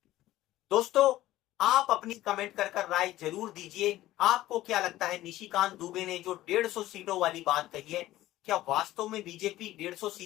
दोस्तों आप अपनी कमेंट कर राय जरूर दीजिए। आपको क्या लगता है, निशिकांत दुबे ने जो 150 सीटों वाली बात कही है, क्या वास्तव में बीजेपी 150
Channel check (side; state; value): right; quieter; 15.4 dB